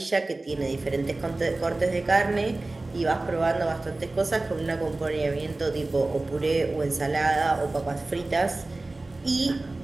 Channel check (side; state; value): left; quieter; 3.0 dB